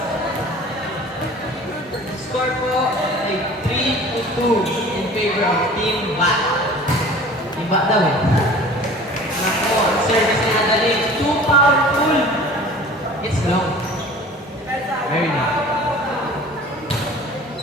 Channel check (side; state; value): both; normal; correlation 0.44